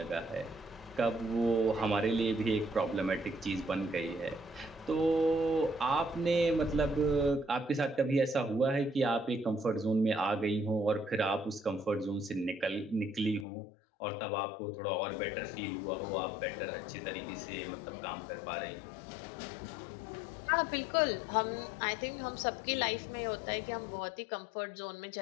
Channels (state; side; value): drops out; right; at 13.5 s